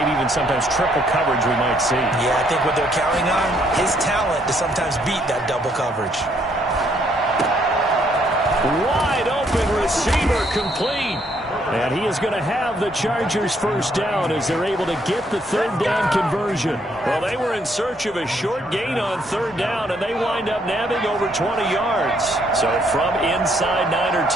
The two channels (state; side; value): normal; both; correlation 0.70